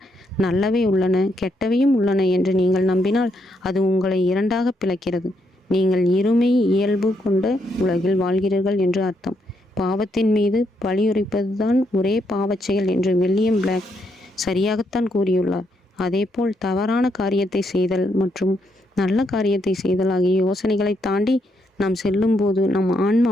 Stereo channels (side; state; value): both; normal; correlation 0.77